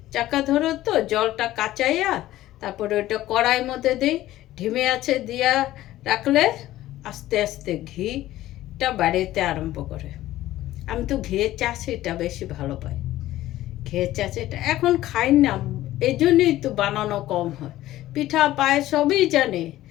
চাক্কা ধরে তো জলটা কাচাইয়া তারপরে ওইটা কড়াইয়ের মধ্যে দিই, ঢিমে আছে দিয়া রাখলে আস্তে আস্তে ঘিটা বাড়িতে আরম্ভ করে। আমি তো ঘিয়ের চাষিটা বেশি ভালো পাই। ঘিয়ের চাষিটা এখন খাই না, এই জন্যই তো বানানো কম হয়। পিঠা পায়ে সবই জানি,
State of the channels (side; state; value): right; quieter; 15.0 dB